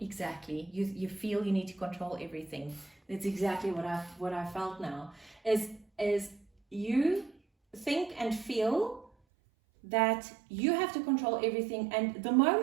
You feel you need to control everything. That's exactly what I felt now. Is you think and feel that you have to control everything, and the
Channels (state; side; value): drops out; left; at 9.1 s